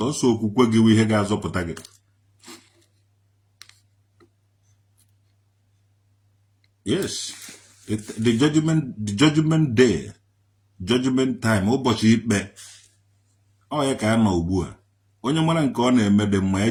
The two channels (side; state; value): both; identical; correlation 1.00